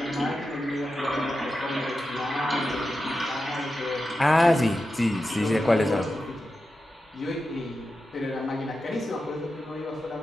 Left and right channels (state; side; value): normal; both; correlation 0.91